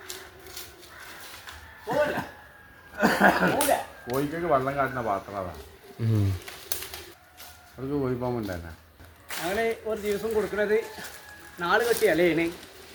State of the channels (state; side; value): identical; both; correlation 1.00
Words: കോഴിക്കൊക്കെ വെള്ളം കാട്ടുന്ന പാത്രം അതാണ്. അവർക്ക് കോഴിപ്പാമ്പുണ്ടല്ല. ഞങ്ങൾ ഒരു ദിവസം കൊടുക്കുന്നത് 4 കെട്ടിയല്ലേ ഇതിന്